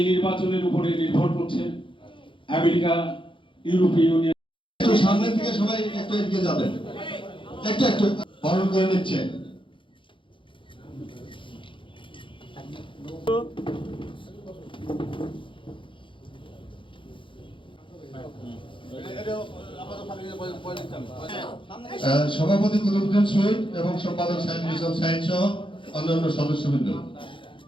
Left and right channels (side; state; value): right; late; 0.25 ms